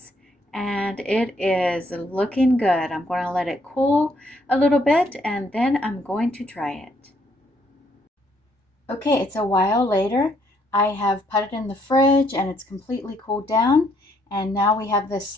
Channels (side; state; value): both; normal; correlation 0.69